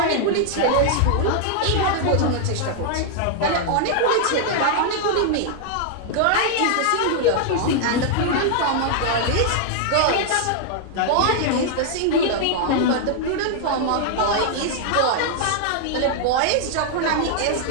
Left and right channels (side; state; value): both; different; correlation 0.00